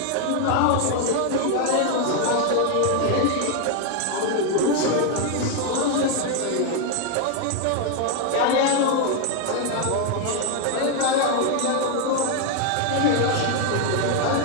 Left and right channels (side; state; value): both; different; correlation 0.01